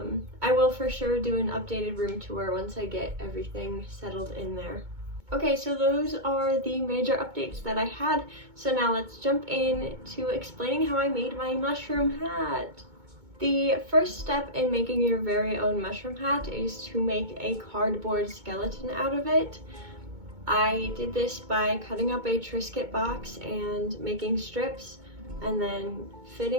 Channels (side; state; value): left; late; 2.2 ms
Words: will for sure do an updated room tour once I get everything settled in there. Okay, so those are the major updates that I had. So now let's jump in to explaining how I made my mushroom hat. The first step in making your very own mushroom hat is to make a cardboard skeleton out of it. I did this by cutting up a Triscuit box and making strips and then